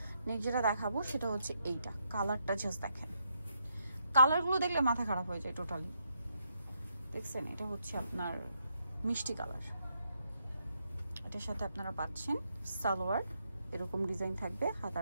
নেক্সট যেটা দেখাবো সেটা হচ্ছে এইটা, কালারটা জাস্ট দেখেন, কালারগুলো দেখলে মাথা খারাপ হয়ে যায় টোটালি। দেখছেন এটা হচ্ছে আপনার মিষ্টি কালার, এটার সাথে আপনারা পাচ্ছেন সালোয়ার, এরকম ডিজাইন থাকবে,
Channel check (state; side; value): inverted; both; correlation -0.79